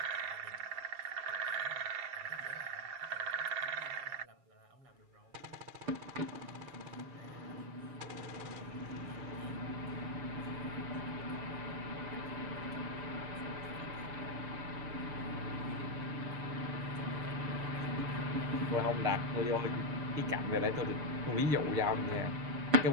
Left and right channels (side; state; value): left; late; 6.9 ms